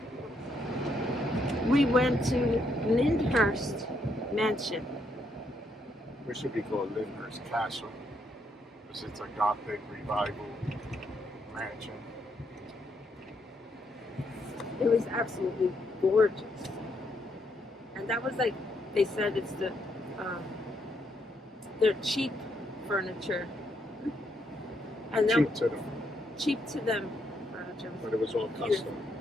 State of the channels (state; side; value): normal; both; correlation 0.76